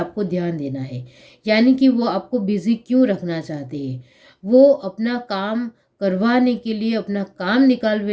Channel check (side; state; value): both; identical; correlation 1.00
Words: ध्यान देना है। यानी कि वो आपको बिजी क्यों रखना चाहते हैं, वो अपना काम करवाने के लिए, अपना काम